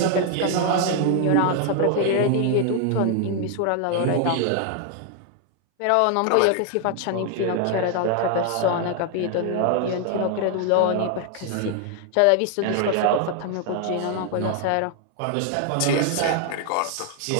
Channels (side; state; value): both; different; correlation 0.00